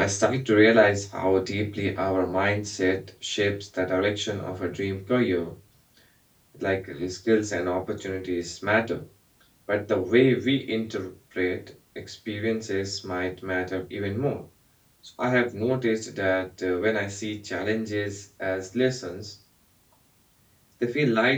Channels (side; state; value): both; identical; correlation 1.00